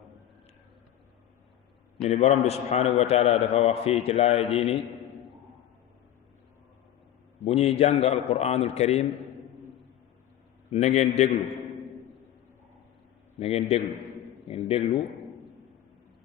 ñu ni borom bi subhanahu wa taala dafa wax fii ci laaya jii ni bu ñuy jàng alquranul karim na ngeen déglu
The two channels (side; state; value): right; quieter; 11.7 dB